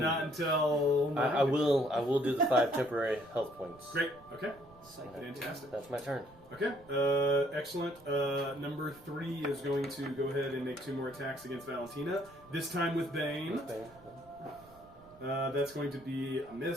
I will do the 5 temporary health points. Great. Okay. Psych. Fantastic. That's my turn. Okay. Excellent. Number 3 is going to go ahead and make 2 more attacks against Valentina. This time with Bane. That's going to be a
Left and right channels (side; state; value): right; noise; rumble, 24 dB below the sound